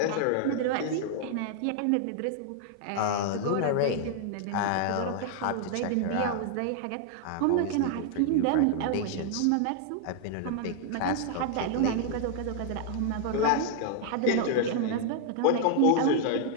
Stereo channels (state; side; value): different; both; correlation 0.00